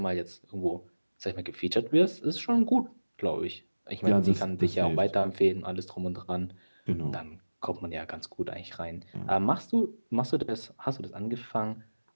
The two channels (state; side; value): inverted; both; correlation -1.00